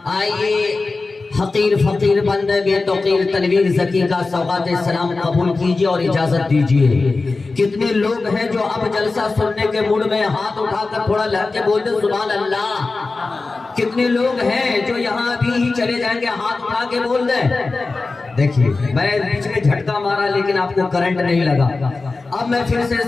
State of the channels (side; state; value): right; quieter; 3.7 dB